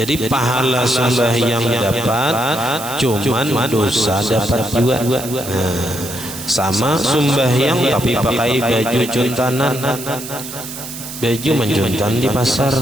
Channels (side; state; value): right; noise; hiss, 10 dB below the sound